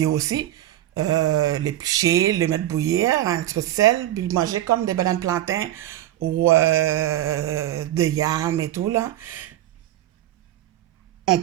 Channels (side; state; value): left; quieter; 13.5 dB